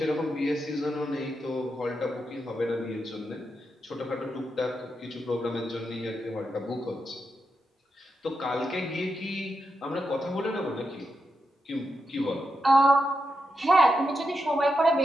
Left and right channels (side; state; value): both; normal; correlation 0.86